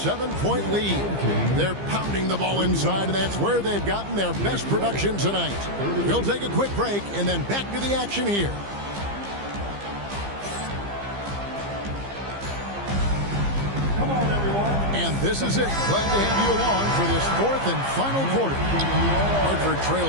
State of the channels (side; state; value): left; late; 15 ms